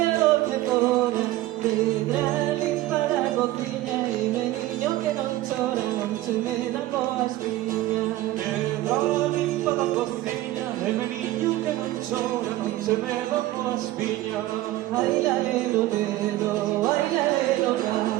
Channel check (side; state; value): left; quieter; 16.3 dB